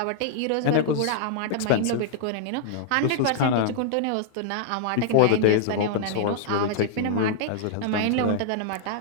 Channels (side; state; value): both; different; correlation -0.01